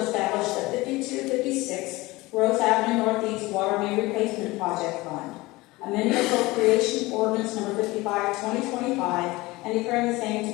the 5256 Rose Avenue Northeast Water Main Replacement Project Fund, amending appropriation ordinance number 55, 2025, and declaring the same to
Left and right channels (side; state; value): right; quieter; 21.0 dB